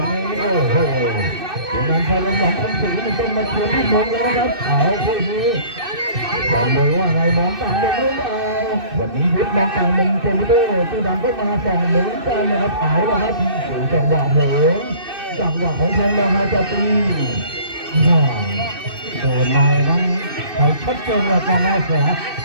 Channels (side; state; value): left; late; 2.6 ms